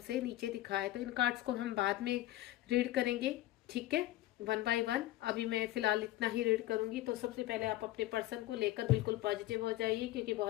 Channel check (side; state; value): right; quieter; 15.9 dB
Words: नीचे दिखाया। तो इन कार्ड्स को हम बाद में रीड करेंगे, ठीक है, 1 बाय 1। अभी मैं फिलहाल इतना ही रीड करूंगी। तो सबसे पहले आप अपने पर्सन को लेकर बिल्कुल पॉजिटिव हो जाइए, क्योंकि